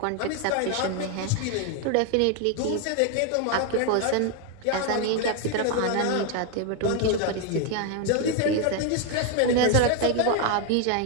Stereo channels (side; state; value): both; different; correlation 0.01